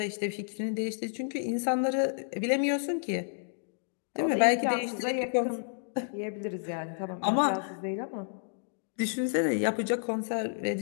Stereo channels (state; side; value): silent; right; digital silence